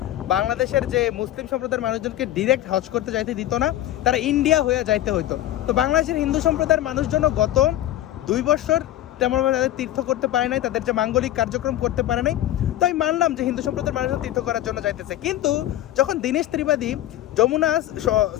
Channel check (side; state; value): right; quieter; 13.5 dB